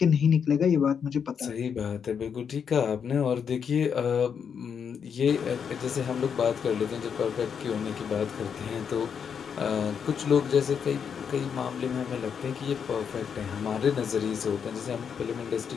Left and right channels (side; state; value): right; quieter; 7.1 dB